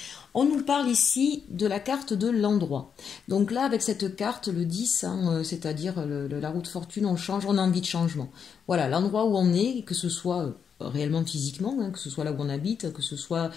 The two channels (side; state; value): right; quieter; 7.0 dB